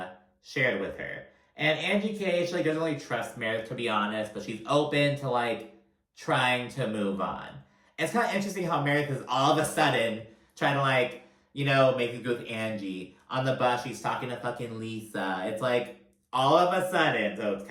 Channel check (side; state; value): both; identical; correlation 1.00